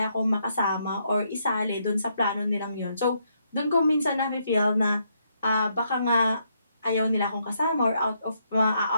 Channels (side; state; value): both; inverted; correlation -0.76